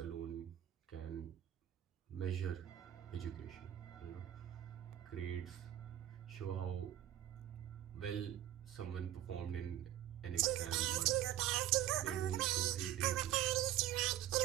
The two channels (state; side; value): quieter; left; 12.4 dB